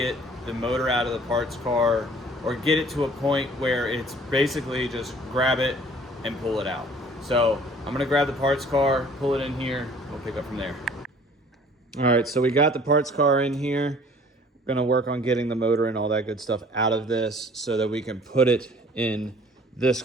the motor out of the parts car or get it to a point where it's basically just grab it and pull it out. So I'm going to grab the parts car, pull it in here, we'll pick up from there. All right, so we got the parts car in here. We're gonna work on getting the motor and all that good stuff out of this so that we can put it in this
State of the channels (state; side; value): normal; both; correlation 0.53